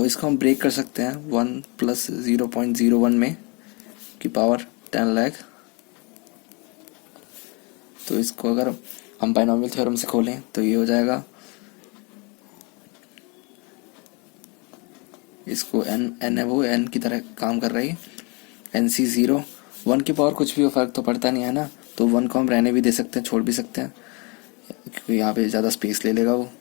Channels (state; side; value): quieter; right; 30.6 dB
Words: इसको हम ब्रेक कर सकते हैं 1 प्लस 0.01 में की पावर 10 लाख। तो इसको अगर हम बाइनोमियल थ्योरम से खोलें तो ये हो जाएगा, इसको n है वो n की तरह काम कर रही है, NC 0 1 की पावर कुछ भी हो फर्क तो पड़ता नहीं है ना, तो 1 को हम रहने भी दे सकते हैं, छोड़ भी सकते हैं क्योंकि यहाँ पे ज़्यादा स्पेस ले लेगा वो।